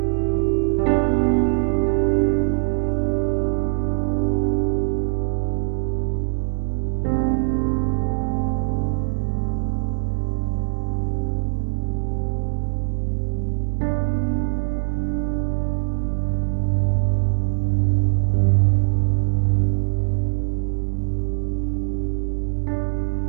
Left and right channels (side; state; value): left; silent; digital silence